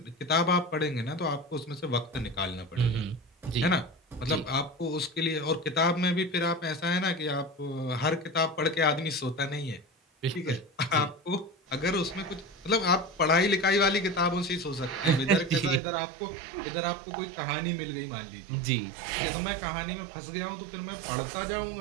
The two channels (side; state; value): left; drops out; at 15.8 s